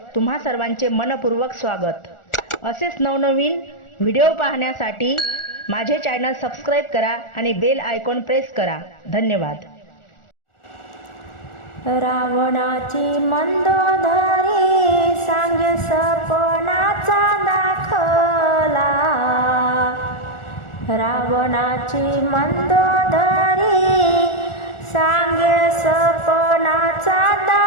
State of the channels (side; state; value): right; late; 1.4 ms